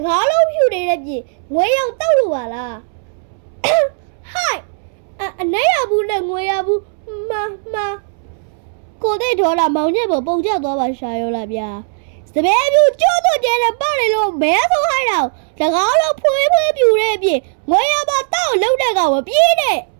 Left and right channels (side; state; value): left; silent; 68 dB below the other